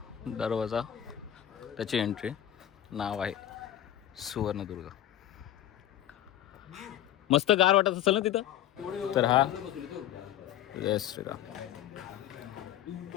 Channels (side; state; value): right; quieter; 11.8 dB